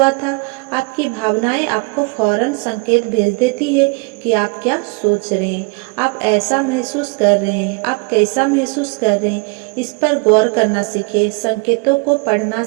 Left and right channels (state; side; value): quieter; left; 30.4 dB